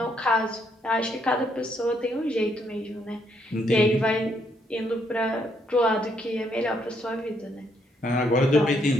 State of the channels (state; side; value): normal; both; correlation 0.73